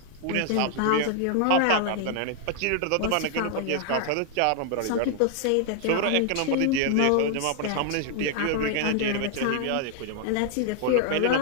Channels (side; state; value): both; different; correlation 0.00